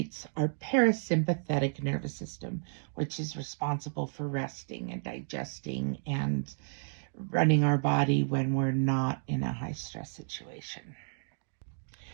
our parasympathetic nervous system, which is responsible for resting and digesting and running our body when we're not in a high stress situation.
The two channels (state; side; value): silent; left; digital silence